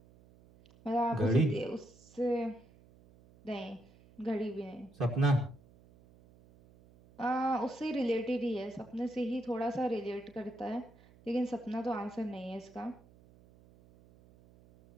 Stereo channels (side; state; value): right; noise; hum, 25 dB below the sound